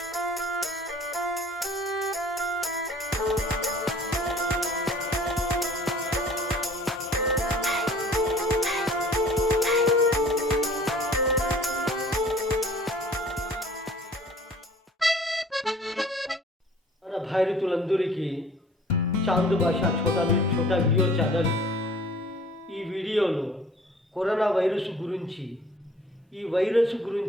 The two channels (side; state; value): both; normal; correlation 0.50